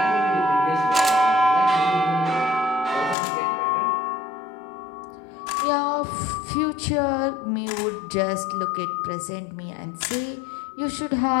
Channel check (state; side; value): drops out; right; at 3.2 s